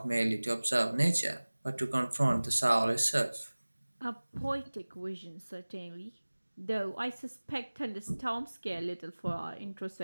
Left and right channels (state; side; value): inverted; both; correlation -1.00